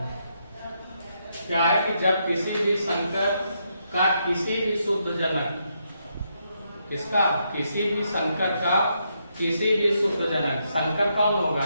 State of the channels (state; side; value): inverted; both; correlation -0.79